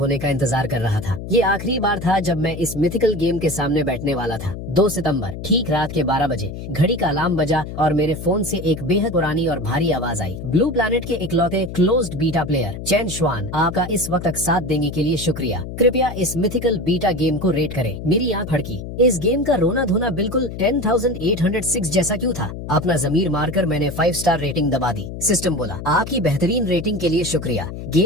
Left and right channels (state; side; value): noise; left; hum, 9 dB below the sound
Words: का इंतजार कर रहा था। ये आखिरी बार था जब मैं इस मिथिकल गेम के सामने बैठने वाला था। 2 सितंबर ठीक रात के 12 बजे घड़ी का अलार्म बजा और मेरे फोन से एक बेहद पुरानी और भारी आवाज आई। ब्लू प्लैनेट के इकलौते क्लोज्ड बीटा प्लेयर चेन श्वान, आपका इस वक्त तक साथ देने के लिए शुक्रिया। कृपया इस मिथिकल बीटा गेम को रेट करें। मेरी आंख फड़की। इस गेम का उनका रोना धोना बिल्कुल 10,806 जैसा क्यों था? अपना जमीर मारकर मैंने 5 स्टार रेटिंग दबा दी। सिस्टम बोला, आपकी बेहतरीन रेटिंग के लिए शुक्रिया।